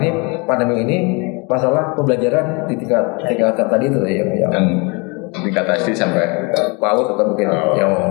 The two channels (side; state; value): right; quieter; 30.0 dB